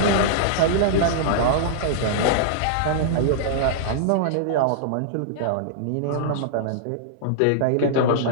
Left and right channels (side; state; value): both; different; correlation -0.02